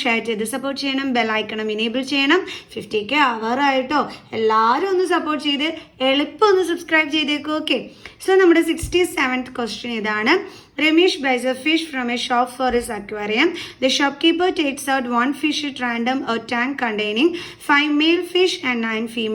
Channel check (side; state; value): both; identical; correlation 1.00